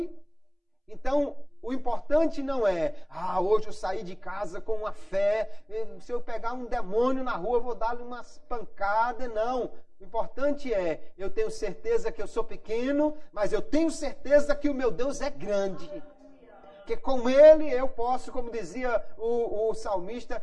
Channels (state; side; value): identical; both; correlation 1.00